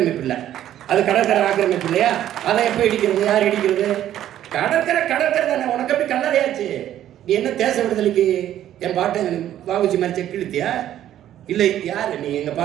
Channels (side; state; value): left; quieter; 11.8 dB